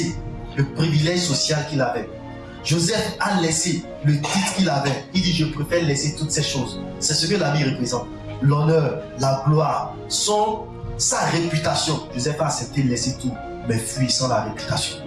le privilège social qu'il avait. Joseph a laissé le titre qu'il avait. Il dit, je préfère laisser toutes ces choses. C'est ce que l'habit représente. L'honneur, la gloire, sa réputation. Joseph a accepté de laisser tout, mais fui sans la réputation.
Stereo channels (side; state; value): both; identical; correlation 1.00